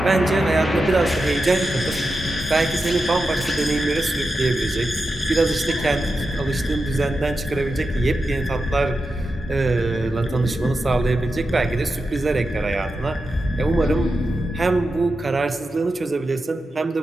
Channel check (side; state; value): both; normal; correlation 0.90